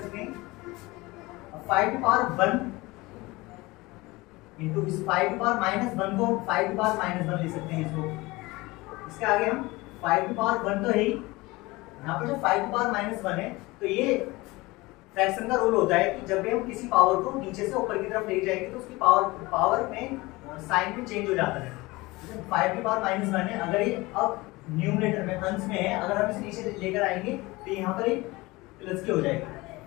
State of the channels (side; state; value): right; quieter; 21.8 dB